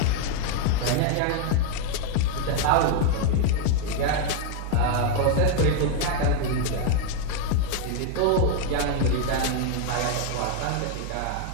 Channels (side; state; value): both; different; correlation 0.01